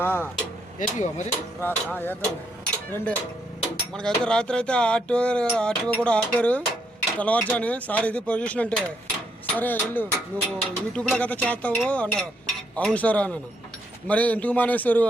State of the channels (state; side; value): normal; both; correlation 0.75